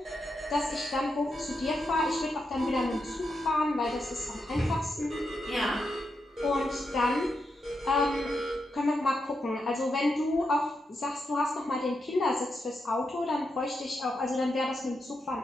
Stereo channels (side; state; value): both; normal; correlation 0.85